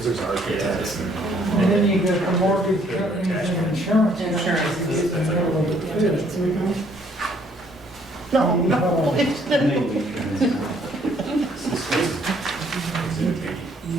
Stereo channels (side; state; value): both; normal; correlation 0.64